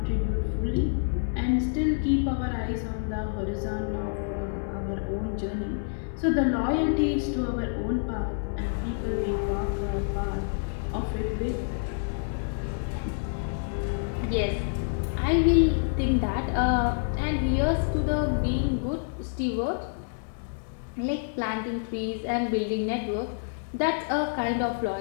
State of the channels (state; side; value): silent; right; 59 dB below the other